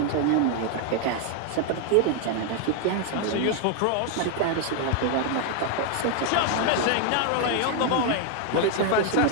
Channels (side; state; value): both; different; correlation 0.00